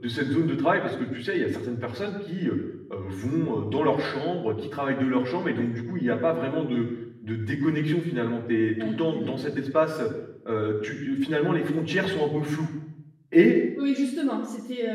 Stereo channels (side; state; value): both; identical; correlation 1.00